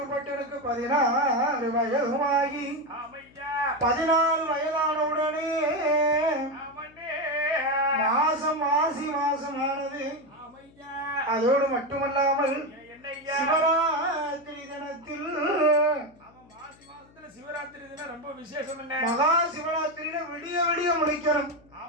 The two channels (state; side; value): noise; left; hum, 27 dB below the sound